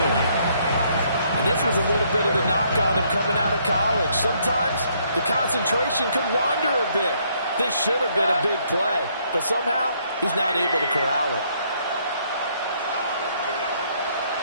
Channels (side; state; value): both; inverted; correlation -0.69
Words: This was a little bit of the knock on him coming out of college. Sometimes the concentration could wander a bit. This should have been a big play, but somehow he's not able to corral it.